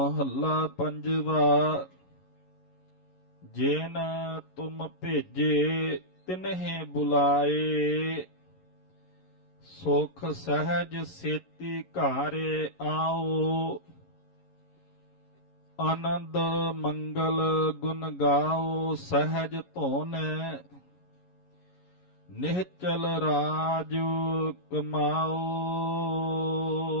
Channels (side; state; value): right; late; 11 ms